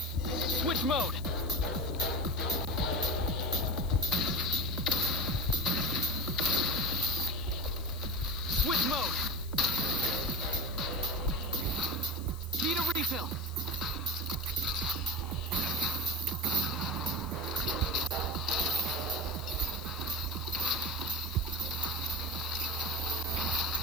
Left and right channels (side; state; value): left; noise; hiss, 18 dB below the sound